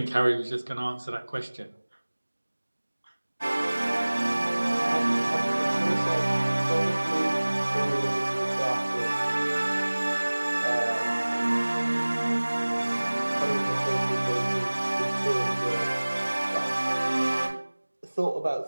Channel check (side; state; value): both; inverted; correlation -1.00